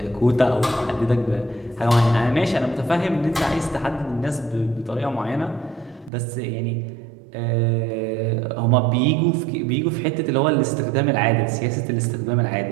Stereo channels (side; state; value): left; drops out; at 6.1 s